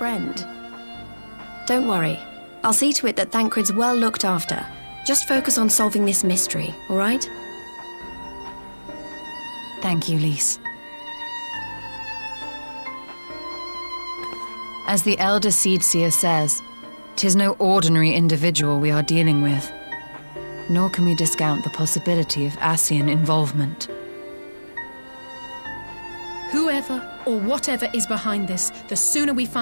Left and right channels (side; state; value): both; inverted; correlation -1.00